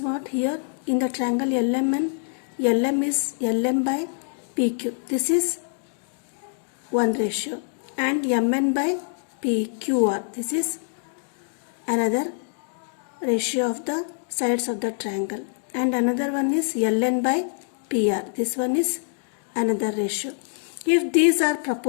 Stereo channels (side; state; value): right; silent; digital silence